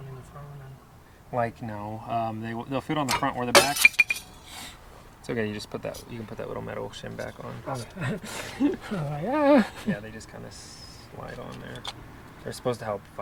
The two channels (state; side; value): identical; both; correlation 1.00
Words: in the front and... Like no, they'll fit on the front or the back. It's okay. You just put that. You can put that little metal shim back on. Yeah. Yeah, they just kind of slide on there. They're supposed to help